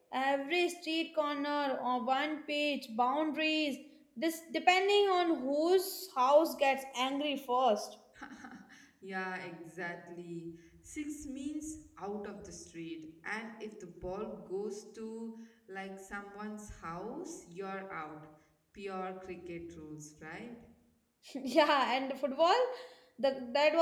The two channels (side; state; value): both; identical; correlation 1.00